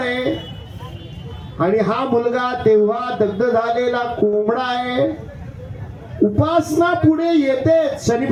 आणि हा मुलगा तेव्हा दग्ध झालेला कोंबडा आहे. उपासना पुढे येते.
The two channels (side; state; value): both; identical; correlation 1.00